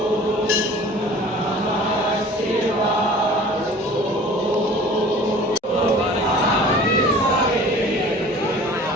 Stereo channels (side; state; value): both; normal; correlation 0.45